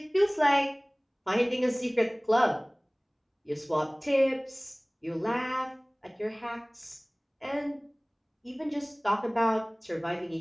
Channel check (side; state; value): both; identical; correlation 1.00